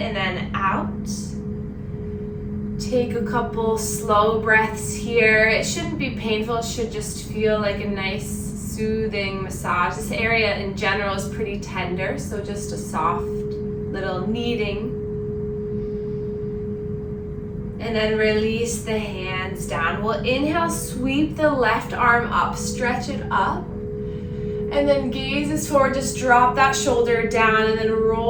then out. Take a couple slow breaths here. It shouldn't be painful, it should just feel like a nice soothing massage. This area in general is pretty tender, so just a soft little kneading. And then release the hands down. We'll inhale, sweep the left arm up, stretch it up. And then gaze is forward, just drop that shoulder down and then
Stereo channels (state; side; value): identical; both; correlation 1.00